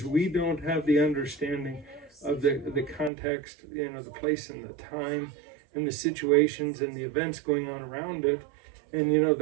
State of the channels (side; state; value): left; drops out; at 3.1 s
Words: we don't have the understanding of the context, the place and the time and the situations and the events going on around it, and